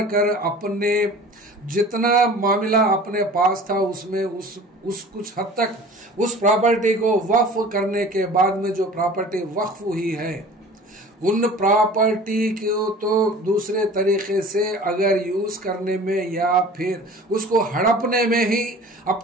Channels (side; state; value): both; normal; correlation 0.43